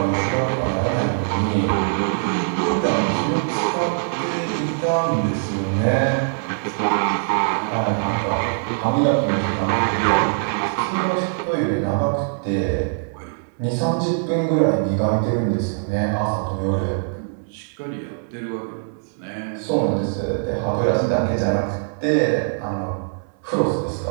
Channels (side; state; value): left; silent; 64 dB below the other